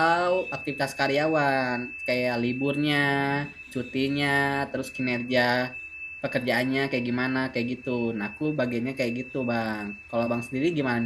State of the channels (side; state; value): both; identical; correlation 1.00